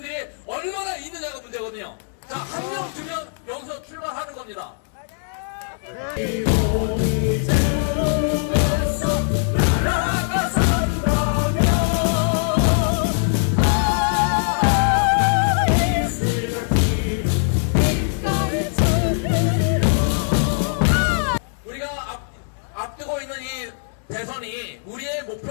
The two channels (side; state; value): right; silent; 65 dB below the other